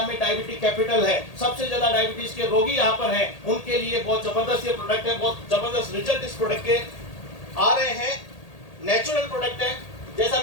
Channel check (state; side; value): late; right; 1.8 ms